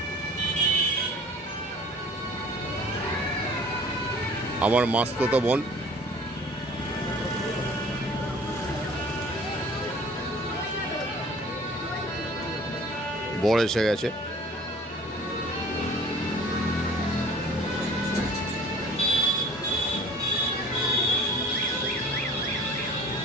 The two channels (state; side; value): normal; both; correlation 0.48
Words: আমার মাস্তুতো বোন, বর এসে গেছে।